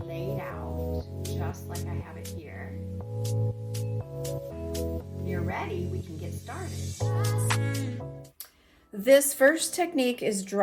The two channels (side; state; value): both; identical; correlation 1.00